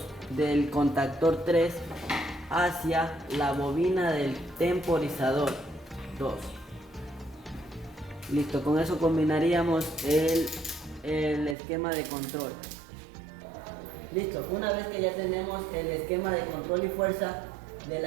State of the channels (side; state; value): left; drops out; at 11.6 s